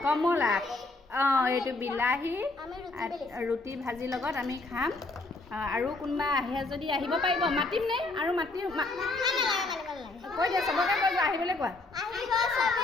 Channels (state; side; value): quieter; right; 3.2 dB